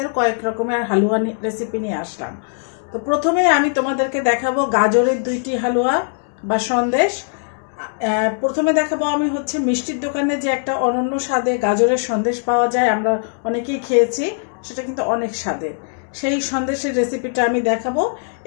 কয়েক রকমের হালুয়া রেসিপি নিয়ে আসলাম। তো প্রথমে আমি তোমাদেরকে দেখাবো গাজরের দুইটি হালুয়া বা সন্দেশ। প্রথমে দেখাবো আমি হচ্ছে মিষ্টির দোকানে যে একটা অনন্য স্বাদে গাজরের সন্দেশ পাওয়া যায়, আমরা অনেকেই খেয়েছি, সেটা কিন্তু অনেক স্বাদের। সেই সন্দেশের রেসিপিটা আমি দেখাবো।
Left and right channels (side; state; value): right; silent; digital silence